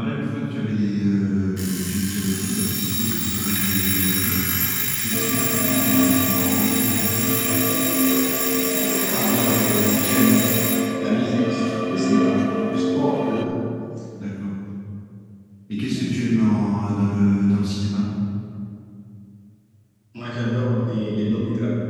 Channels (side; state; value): both; identical; correlation 1.00